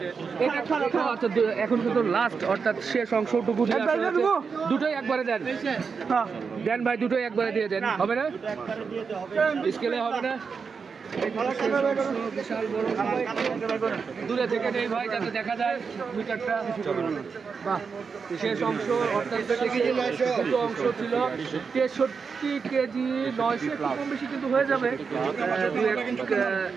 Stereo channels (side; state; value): left; quieter; 5.5 dB